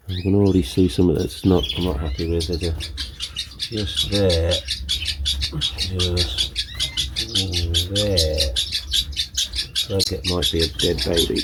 I can already see something that's I'm not happy with. There's just there. Just there. Like it might be a dead baby.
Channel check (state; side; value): identical; both; correlation 1.00